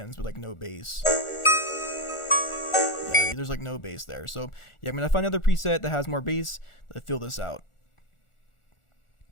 with like no bass. Yeah, there's like no bass there. So yeah, I'm going to find another preset that has more bass to fill this out.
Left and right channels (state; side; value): late; right; 1.4 ms